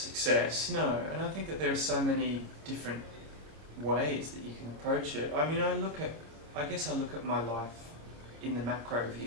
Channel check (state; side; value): late; left; 26 ms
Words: no, and I think that there are so many different ways that you can approach it. I mean, I guess I look at my life in the macro